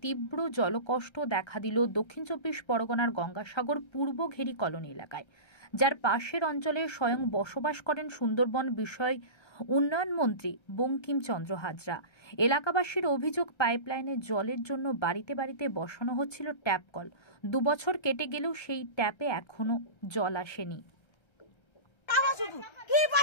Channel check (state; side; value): late; right; 1.3 ms